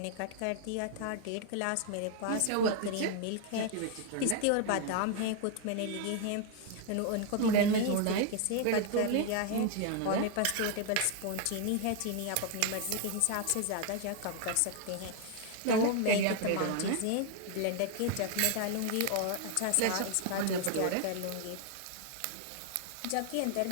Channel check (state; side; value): different; both; correlation 0.00